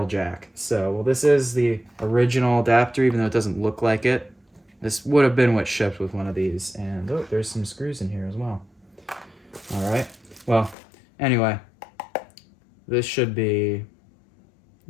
jack. So, well, this is the original adapter, even though it doesn't look like it. This would have been what shipped with one of these. And, oh, there's some screws in here as well. All right. Well, anyway, this should be...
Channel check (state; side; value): drops out; right; at 10.8 s